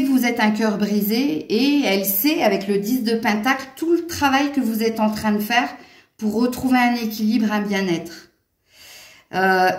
que vous êtes un cœur brisé et elle sait, avec le 10 de Pentacle, tout le travail que vous êtes en train de faire pour retrouver un équilibre, un bien-être.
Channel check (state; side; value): identical; both; correlation 1.00